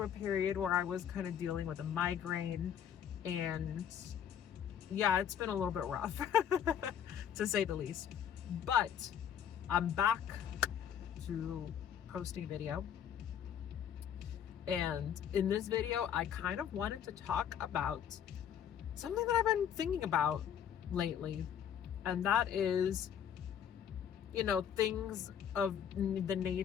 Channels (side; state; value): right; quieter; 8.9 dB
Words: a period where I was kind of dealing with a migraine, and yeah, it's been a little bit rough to say the least. But I'm back to posting video. And in this video, I kind of wanted to talk about something that I've been thinking about lately. And that is, things of the